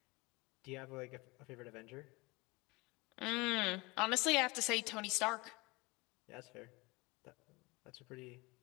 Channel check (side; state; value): right; quieter; 24.6 dB